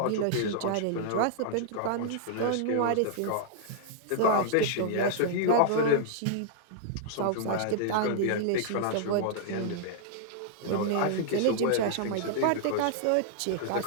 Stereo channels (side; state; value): both; different; correlation -0.01